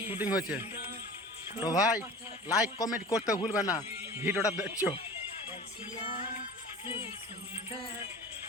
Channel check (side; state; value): both; normal; correlation 0.38